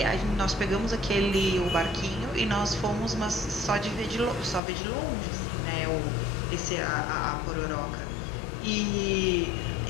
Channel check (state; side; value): drops out; right; at 4.6 s